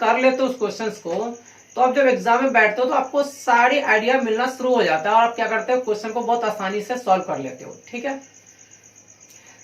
लेते हो उस क्वेश्चन को तो आप जब एग्जाम में बैठते हो तो आपको सारी आइडिया मिलना शुरू हो जाता है और आप क्या करते हो क्वेश्चन को बहुत आसानी से सॉल्व कर लेते हो, ठीक है।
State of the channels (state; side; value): identical; both; correlation 1.00